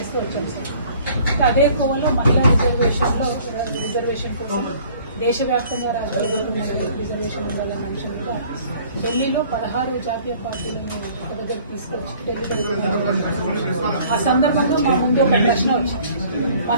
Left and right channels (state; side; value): inverted; both; correlation -0.54